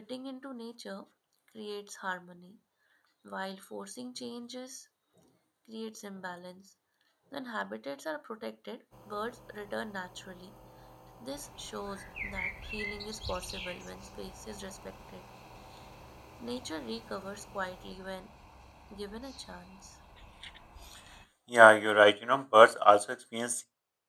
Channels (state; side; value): identical; both; correlation 1.00